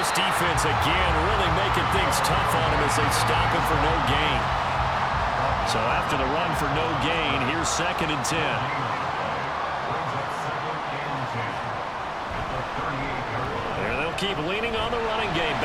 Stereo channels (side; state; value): both; identical; correlation 1.00